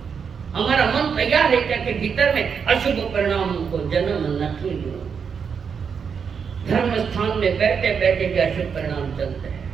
हमारा मन तैयार है क्या कि भीतर में अशुभ परिणामों को जन्म नहीं दो। धर्म स्थान में बैठे बैठे भी अशुभ परिणाम चलते हैं,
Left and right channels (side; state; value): left; quieter; 6.5 dB